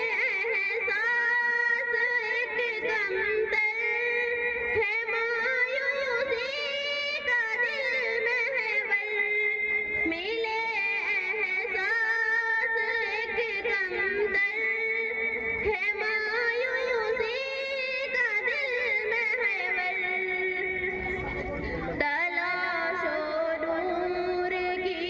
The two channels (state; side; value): identical; both; correlation 1.00